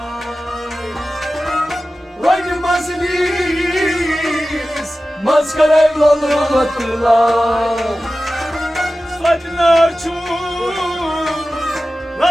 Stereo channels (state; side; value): normal; both; correlation 0.95